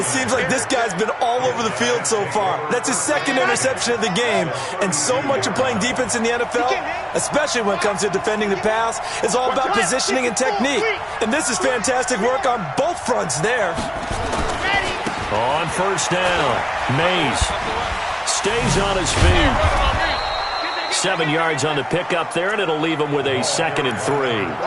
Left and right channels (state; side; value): identical; both; correlation 1.00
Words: seems like this guy's been all over the field so far. That's his 2nd interception of the game. And so much of playing defense in the NFL, especially when it comes to defending the pass, is all about positioning and technique. And this is fantastic work on both fronts there. On 1st down, Mays stays on his feet. 7 yards on the pickup there, and it'll leave him with a 2nd and 3.